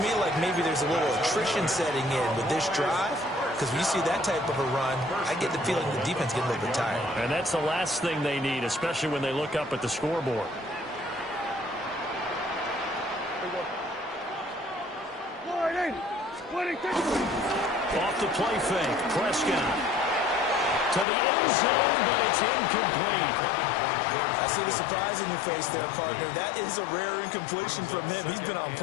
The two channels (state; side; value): drops out; right; at 21.1 s